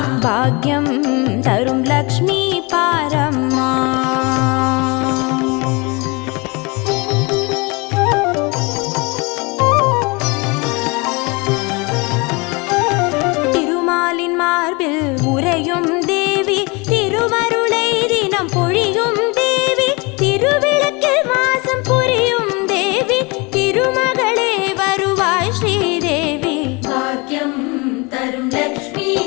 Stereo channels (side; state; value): right; quieter; 27.8 dB